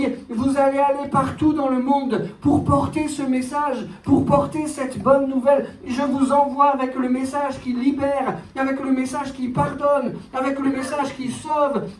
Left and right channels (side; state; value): both; identical; correlation 1.00